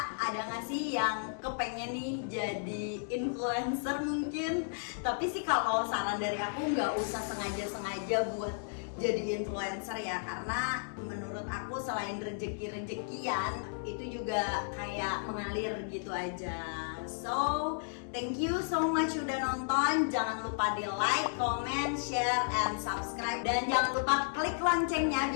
ada nggak sih yang kepengen nih jadi influencer mungkin? Tapi sih kalau saran dari aku, nggak usah sengaja buat jadi influencer ya, karena menurut aku selain rezeki-rezekian itu juga kayak mengalir gitu aja. So thank you so much udah nonton. Jangan lupa di like, comment, share, and subscribe, dan jangan lupa klik loncengnya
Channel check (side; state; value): right; silent; digital silence